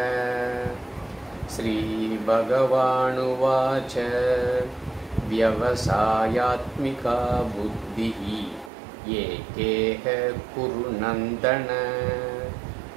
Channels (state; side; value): drops out; left; at 8.7 s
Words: श्री भगवानुवाच व्यवसायात्मिका बुद्धिः एकेह कुरु नन्दन